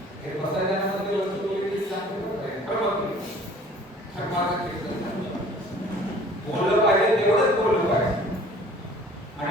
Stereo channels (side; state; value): both; normal; correlation 0.51